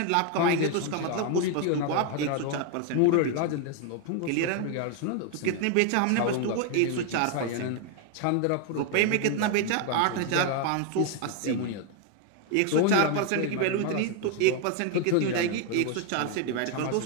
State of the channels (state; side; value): different; both; correlation 0.01